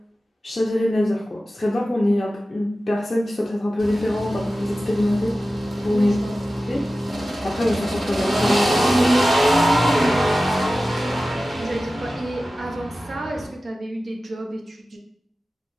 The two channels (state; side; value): normal; both; correlation 0.95